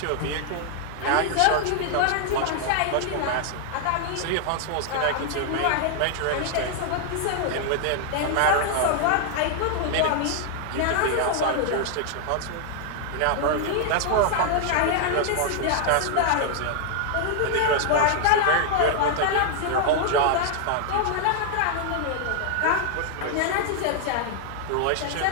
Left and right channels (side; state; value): both; different; correlation 0.00